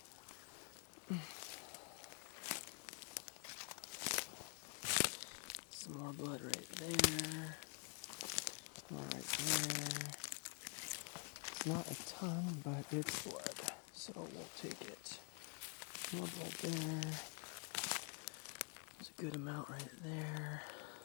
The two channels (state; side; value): quieter; right; 37.5 dB